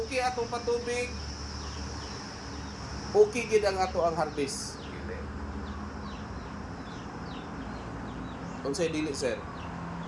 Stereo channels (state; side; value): identical; both; correlation 1.00